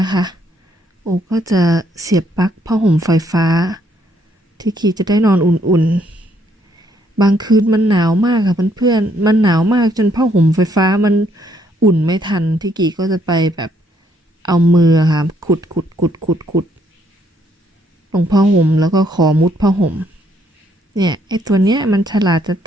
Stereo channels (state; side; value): normal; both; correlation 0.70